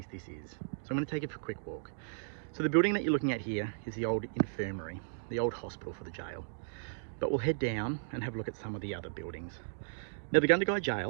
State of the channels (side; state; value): left; silent; digital silence